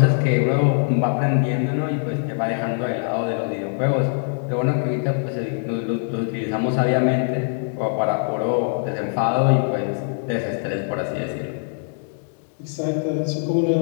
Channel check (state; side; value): silent; right; digital silence